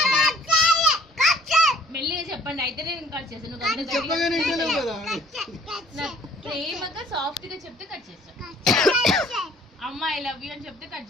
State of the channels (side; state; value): both; normal; correlation 0.56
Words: మెల్లిగా చెప్పండి, అయితే నేను కట్ చేస్తాను. ప్రేమగా సాఫ్ట్ గా చెప్తే కట్ చేస్తాను. అమ్మ ఐ లవ్ యూ అని చెప్తే కట్